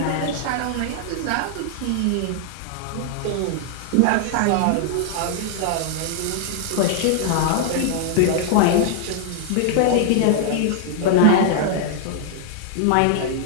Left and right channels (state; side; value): different; both; correlation 0.00